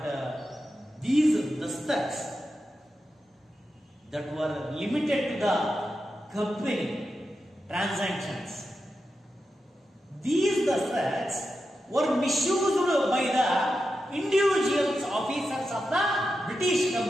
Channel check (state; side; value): normal; both; correlation 0.89